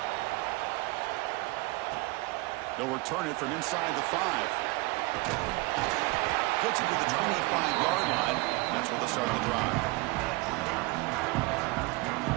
They'll return it from inside the 5. Gets it to the 25-yard line. That's where they'll start the drive.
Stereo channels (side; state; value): left; quieter; 24.0 dB